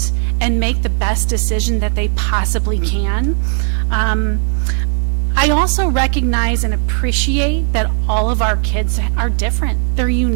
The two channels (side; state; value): left; silent; digital silence